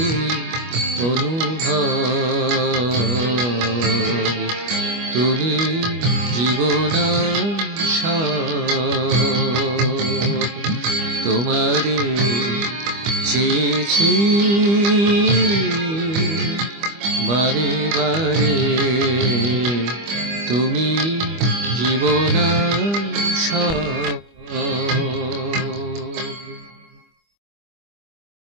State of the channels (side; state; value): left; late; 25 ms